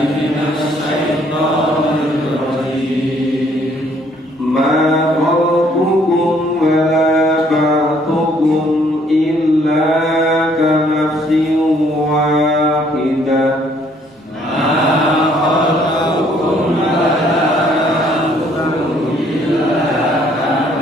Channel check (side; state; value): both; normal; correlation 0.64